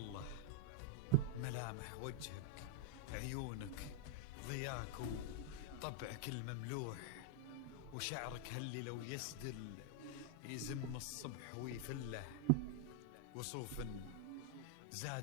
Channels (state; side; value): different; both; correlation 0.00